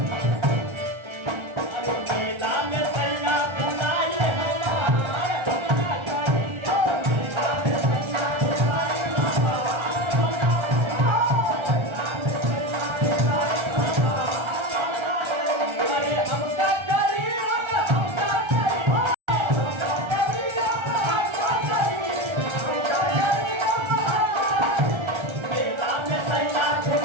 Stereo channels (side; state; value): left; late; 1.3 ms